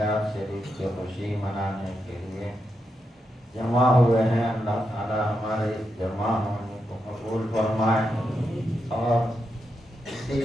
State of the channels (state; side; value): normal; both; correlation 0.84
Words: شریف کی خوشی منانے کے لیے جمع ہوئے ہیں۔ اللہ تعالی ہمارے اس جمع ہونے کو قبول فرمائے، اور اسی